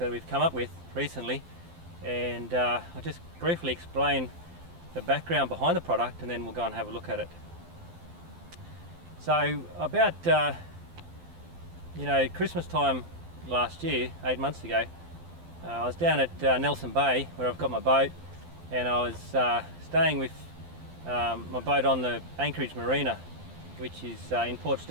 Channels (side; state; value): left; late; 12 ms